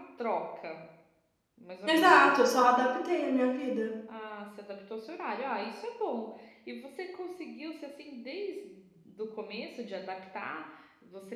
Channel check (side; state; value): both; identical; correlation 1.00